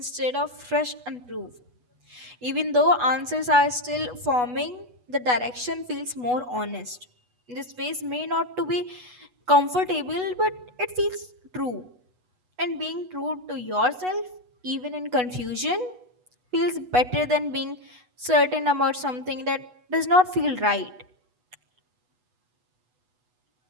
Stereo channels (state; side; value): late; left; 8.1 ms